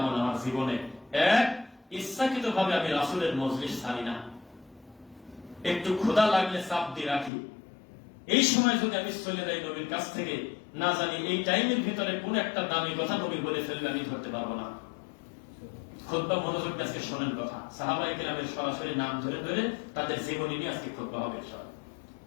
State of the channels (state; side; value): drops out; right; at 7.3 s